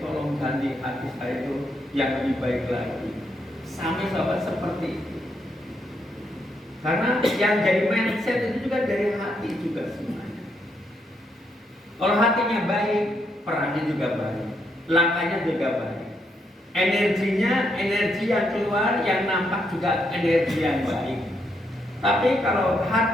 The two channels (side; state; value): both; normal; correlation 0.77